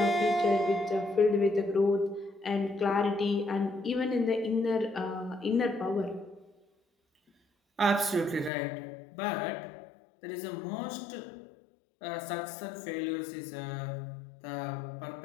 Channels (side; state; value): right; drops out; at 8.5 s